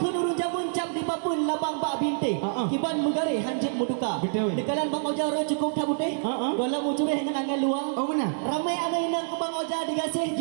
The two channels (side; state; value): left; silent; 56 dB below the other